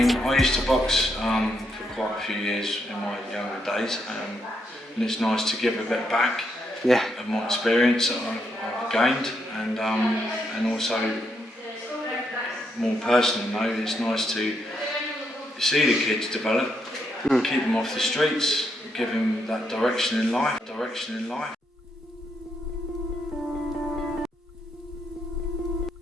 I used to box for quite a few years in my younger days, and it's nice to give a bit back of my experience that I've gained, and also more personal note, it's nice to see the kids develop, keep them off the streets, give them that direction in life.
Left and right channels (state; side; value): normal; both; correlation 0.78